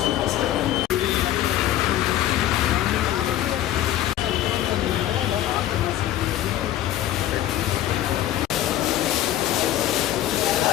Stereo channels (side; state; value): right; quieter; 13.1 dB